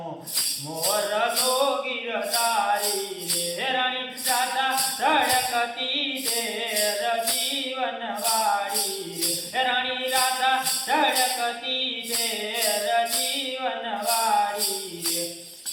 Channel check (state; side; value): identical; both; correlation 1.00